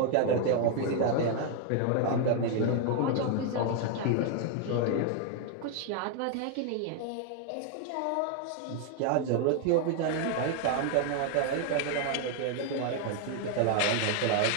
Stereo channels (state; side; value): different; both; correlation 0.00